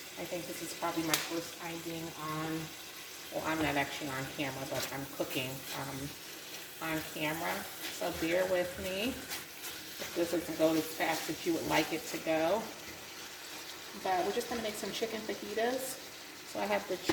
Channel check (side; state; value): both; identical; correlation 1.00